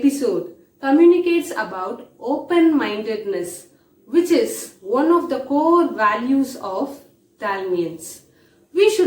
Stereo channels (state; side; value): identical; both; correlation 1.00